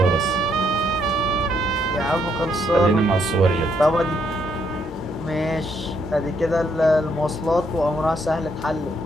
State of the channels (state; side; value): normal; both; correlation 0.73